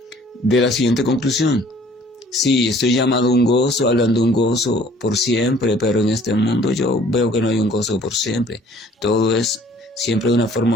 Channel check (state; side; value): normal; both; correlation 0.55